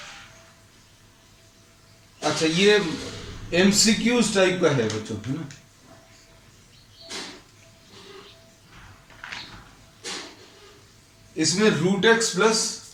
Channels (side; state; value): both; identical; correlation 1.00